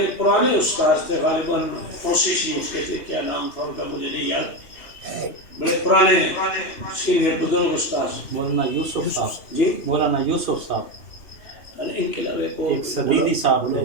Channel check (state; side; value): late; right; 2.9 ms